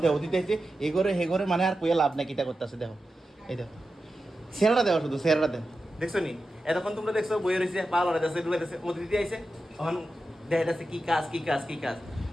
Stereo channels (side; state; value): both; normal; correlation 0.91